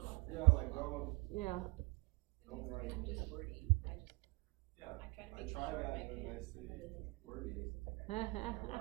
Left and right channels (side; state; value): left; quieter; 27.2 dB